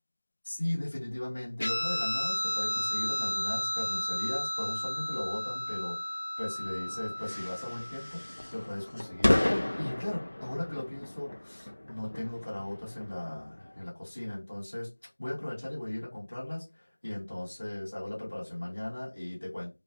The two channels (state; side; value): inverted; both; correlation -1.00